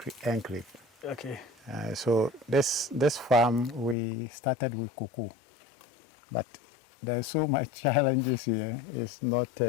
enclave. Okay. So this farm we started with cocoa, but there's so much challenges here. It's not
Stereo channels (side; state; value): right; drops out; at 4.0 s